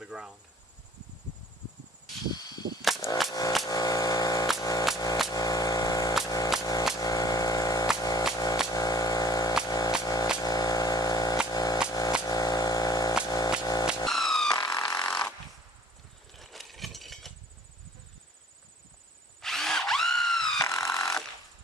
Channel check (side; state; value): both; normal; correlation 0.55